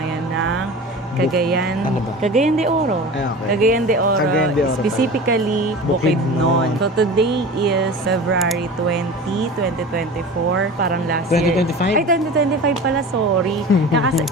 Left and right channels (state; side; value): normal; both; correlation 0.35